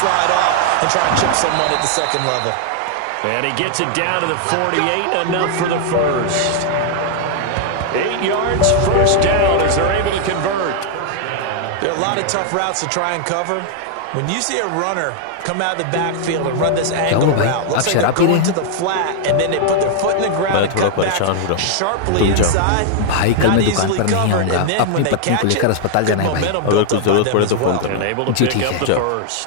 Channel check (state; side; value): different; both; correlation 0.00